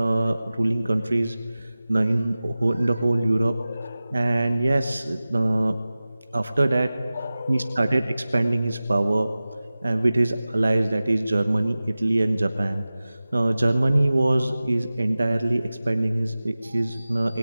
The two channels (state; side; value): inverted; both; correlation -0.97